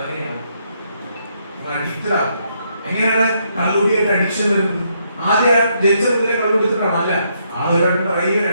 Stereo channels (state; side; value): inverted; both; correlation -0.75